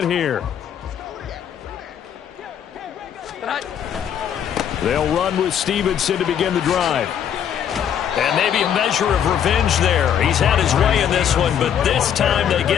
here. They'll run with Stevenson to begin the drive. And maybe a measure of revenge there. He's had his way in this one, but this time they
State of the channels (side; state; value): right; quieter; 9.0 dB